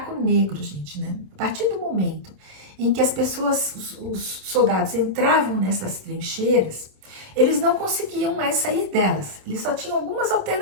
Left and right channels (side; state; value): left; late; 27 ms